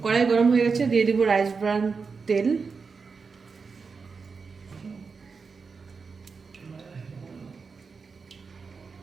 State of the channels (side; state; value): left; quieter; 5.0 dB